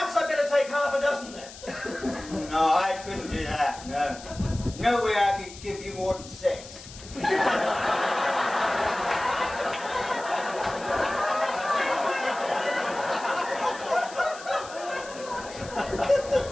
I'd better take half a dozen then. No, I couldn't do that, no. No way I could give you more than 6.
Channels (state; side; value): noise; left; hiss, 16 dB below the sound